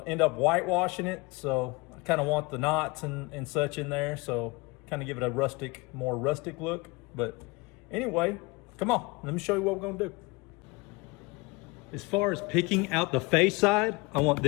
end up whitewashing it, so I kind of want the knots and such in there, so kind of give it a more rustic look. But anyway, come on, let me show you what we're gonna do. As far as picking out the face side, I want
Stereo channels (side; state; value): right; quieter; 25.3 dB